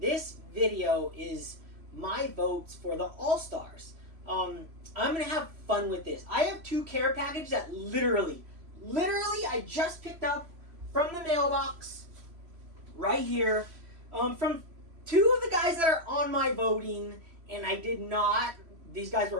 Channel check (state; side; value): late; left; 3.1 ms